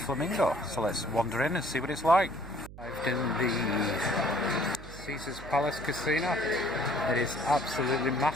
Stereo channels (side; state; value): right; noise; hum, 15 dB below the sound